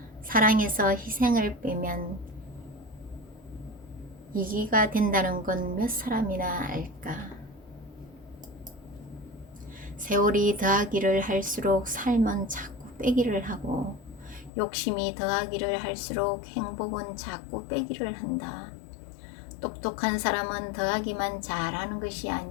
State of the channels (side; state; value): right; drops out; at 14.5 s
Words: 사랑에서 희생을 빼면 이기가 된다는 건 몇 사람이나 알까? 세월이 더하기를 할수록 삶은 자꾸 빼기를 하고 욕심이 더하기를 할수록 행복은 자꾸 빼기를 한다. 똑똑한 사람은 더하기만 잘하는 것이